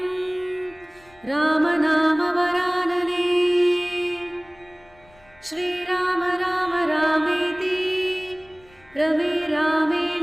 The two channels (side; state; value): left; noise; rumble, 29 dB below the sound